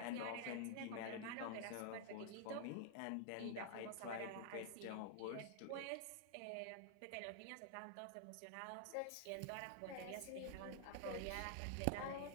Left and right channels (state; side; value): different; both; correlation 0.00